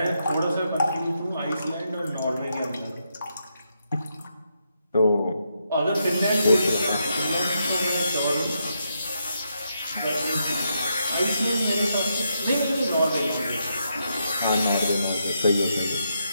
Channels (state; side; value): inverted; both; correlation -0.81